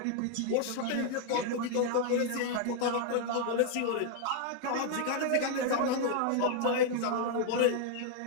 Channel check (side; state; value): both; different; correlation 0.00